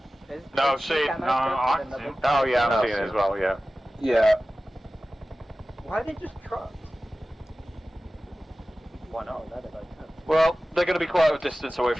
No, see, no, oh yeah, I'm seeing it as well, yeah. Yeah. Why are they just trucks? Why not? Well, they're going to be quite a distance away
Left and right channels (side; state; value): both; normal; correlation 0.96